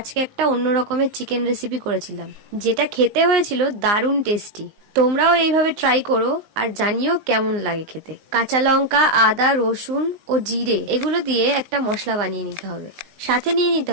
একটা অন্য রকমের চিকেন রেসিপি করেছিলাম, যেটা খেতে হয়েছিল দারুণ টেস্টি। তোমরাও এইভাবে ট্রাই করো আর জানিও কেমন লাগে খেতে। কাঁচা লঙ্কা, আদা, রসুন ও জিরে এগুলো দিয়ে একটা মশলা বানিয়ে নিতে হবে। সাথে নিয়ে নিতে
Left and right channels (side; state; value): left; late; 19 ms